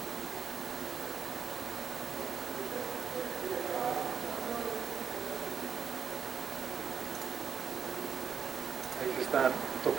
Ahí se están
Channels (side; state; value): left; quieter; 6.9 dB